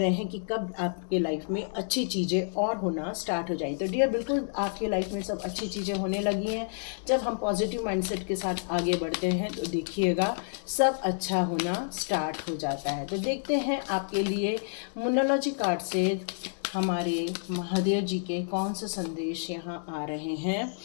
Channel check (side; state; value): right; silent; digital silence